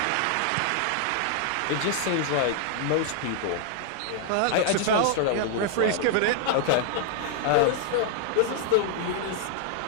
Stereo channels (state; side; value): different; both; correlation -0.01